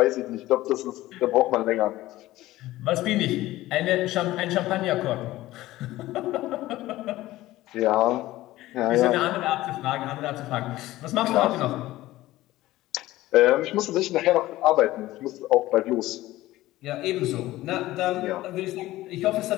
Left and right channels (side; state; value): right; quieter; 16.6 dB